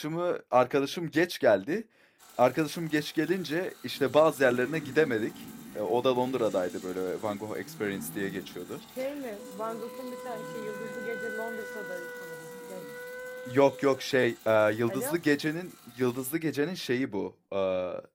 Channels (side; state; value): both; identical; correlation 1.00